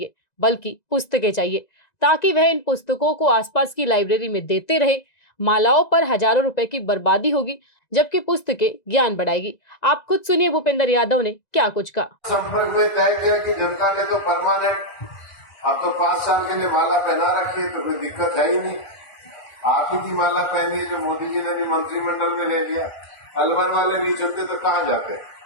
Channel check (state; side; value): late; right; 1.9 ms